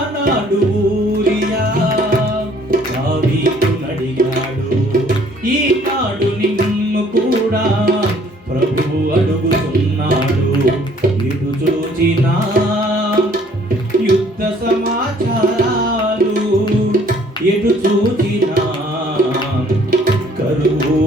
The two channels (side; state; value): both; normal; correlation 0.59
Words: ఊరియా దావీదును అడిగాడు. ఈనాడు నిన్ను కూడా ప్రభువు అడుగుతున్నాడు. ఇటు చూచిన యుద్ధ సమాచారాలు, ఎటు చూచిన కరువు